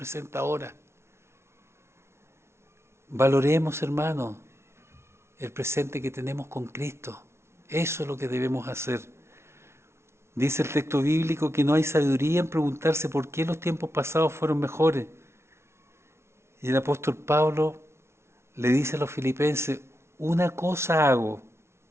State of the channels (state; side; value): late; left; 0.13 ms